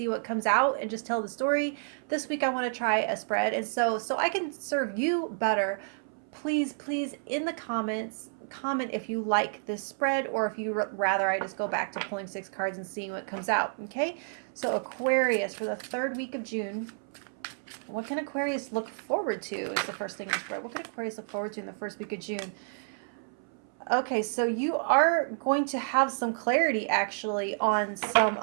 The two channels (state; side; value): silent; left; 58 dB below the other